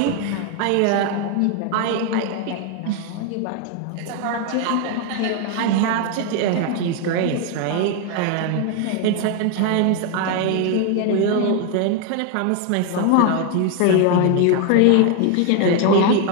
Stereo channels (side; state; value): both; different; correlation 0.01